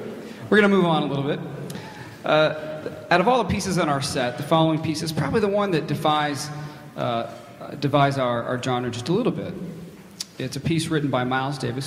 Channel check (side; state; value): both; identical; correlation 1.00